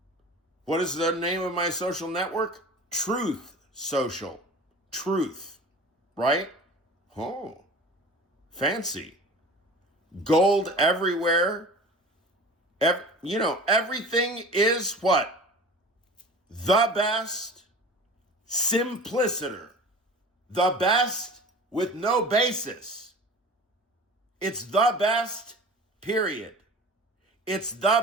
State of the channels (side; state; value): both; normal; correlation 0.39